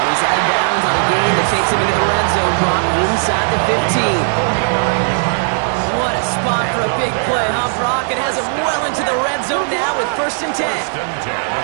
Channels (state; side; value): silent; left; digital silence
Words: he's out of bounds on a gain that takes him into the red zone. Brock inside the 15. What a spot for a big play, huh, Brock? It has him well into the red zone now with 1st and 10.